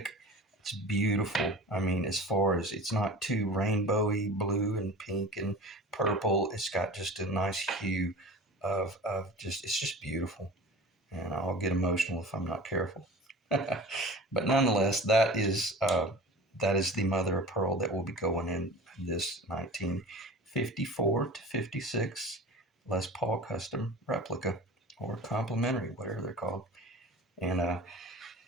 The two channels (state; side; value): normal; both; correlation 0.38